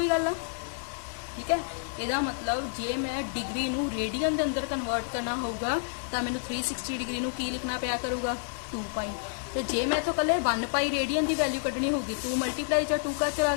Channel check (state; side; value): silent; right; 58 dB below the other